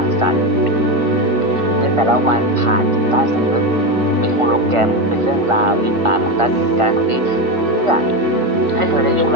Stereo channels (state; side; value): late; left; 1.5 ms